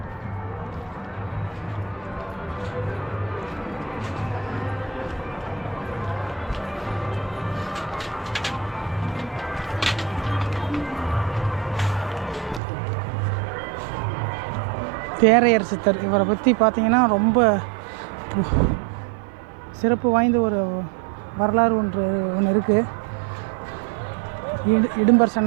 தேரையர் சித்தர். இவரை பற்றி பார்த்தீங்கன்னா ரொம்ப சிறப்பு வாய்ந்த ஒரு வரலாறு ஒன்று இருக்குது. இடும்பர்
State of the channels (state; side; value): drops out; left; at 12.6 s